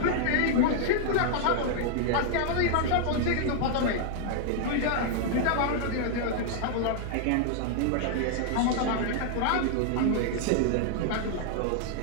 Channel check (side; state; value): both; different; correlation -0.01